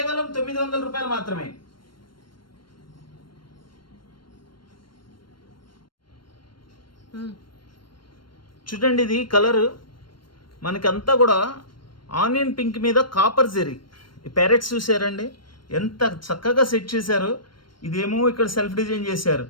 900 రూపాయలు మాత్రమే. చూడండి ఇది కలర్ మనకంతా కూడా ఆనియన్ పింక్ మీద కాపర్ జెరీ. ఈ ప్యారెట్స్ చూసారండి ఎంత చక్కగా సెట్ చేశారు. ఇదేమో ఇక్కడ సెల్ఫ్ డిజైన్ చేశారు.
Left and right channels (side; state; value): right; late; 0.72 ms